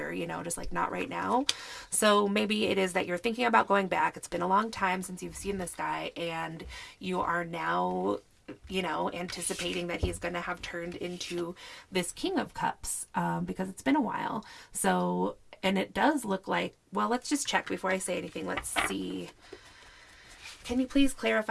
just like not right now. So maybe it is that you're thinking about going back. It's been a long time since you've seen this guy, and you are now, anticipating that he's going to have turned into this King of Cups, because it's been a while. So, and it does look like, well, let's just check before I say anything. Let's see. Can you please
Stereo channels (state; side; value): identical; both; correlation 1.00